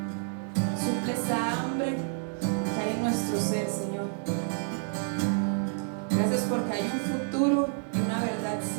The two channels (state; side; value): silent; left; 58 dB below the other